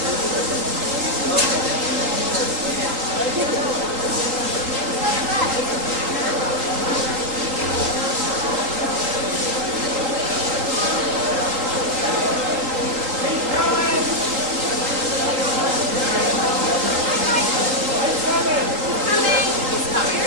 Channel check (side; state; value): left; late; 3.8 ms